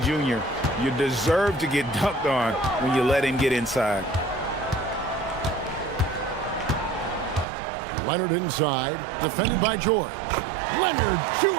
Jr., you deserve to get dunked on when you let him get inside. Leonard inside, defended by George. Leonard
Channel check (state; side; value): drops out; left; at 7.5 s